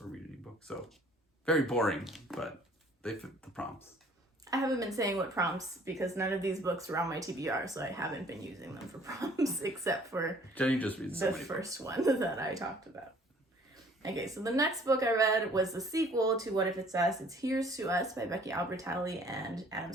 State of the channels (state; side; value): normal; both; correlation 0.56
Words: or read an ebook. So very boring, but they fit the prompts. I haven't been saying what prompts because none of these books were on my TBR, so I haven't been using them for prompts except for Jenny just reads the first one that I talked about. Okay, so the next book I read was the sequel to What If It's Us? It's Here's to Us by Becky Albertalli and Adam